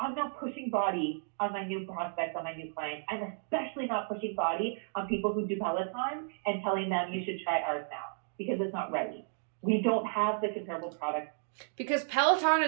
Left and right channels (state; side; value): silent; left; digital silence